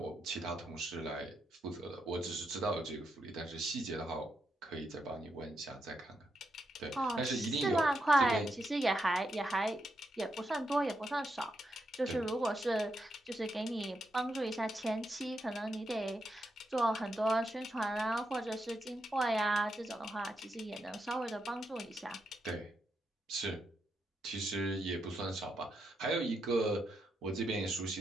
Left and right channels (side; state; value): both; normal; correlation 0.83